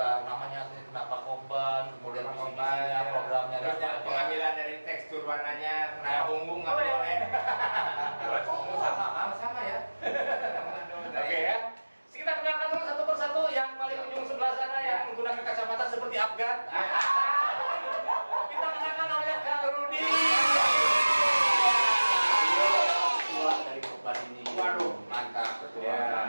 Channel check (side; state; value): both; inverted; correlation -1.00